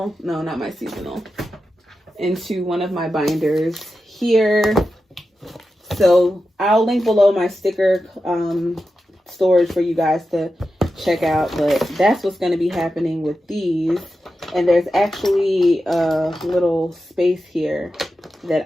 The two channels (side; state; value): both; normal; correlation 0.91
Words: no, not my seasonal, into one of my binders here. So I'll link below my sticker storage for you guys to check out, but that's what's going to be happening with these. And there's actually a little space here